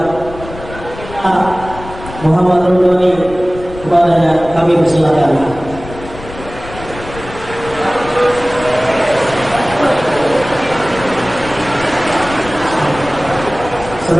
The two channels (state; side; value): noise; left; rumble, 14 dB below the sound